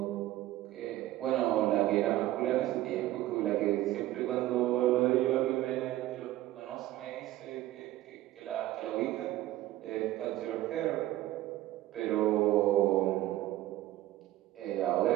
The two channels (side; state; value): left; quieter; 15.3 dB